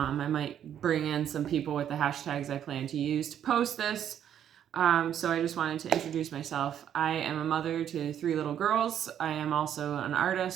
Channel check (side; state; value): left; quieter; 9.8 dB